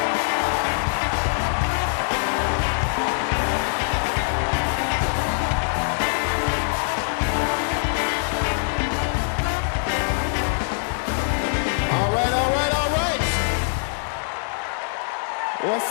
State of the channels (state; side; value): silent; right; digital silence